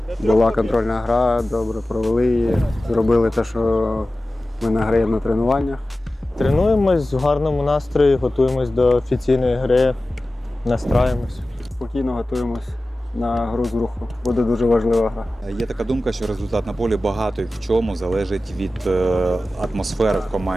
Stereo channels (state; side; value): normal; both; correlation 0.95